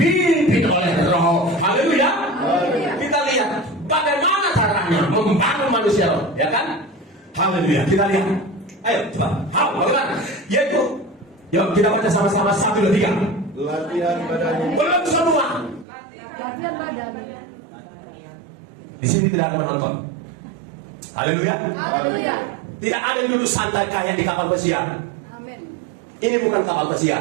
oleh roh. Haleluya. Kita lihat bagaimana caranya membangun manusia roh, ya kan? Haleluya. Kita lihat. Ayo coba. Bagaimana? Yaitu, yuk kita baca sama-sama 1, 2, 3. Latihan badan. Belum semua. Latihan badan. Di sini tidak ada penonton. Haleluya. Haleluya. Tidak ada yang duduk santai kayak di kapal pesiar. Amin. Ini bukan kapal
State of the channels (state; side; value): drops out; left; at 15.9 s